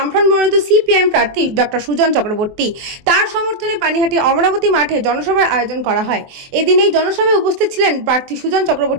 মনোনীত সিপিআইএম প্রার্থী ডক্টর সুজন চক্রবর্তী তার সমর্থনে পানিহাটি অমরাবতী মাঠে জনসভার আয়োজন করা হয়। এদিন এই জনসভায় উপস্থিত ছিলেন প্রার্থী সুজন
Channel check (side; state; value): left; late; 24 ms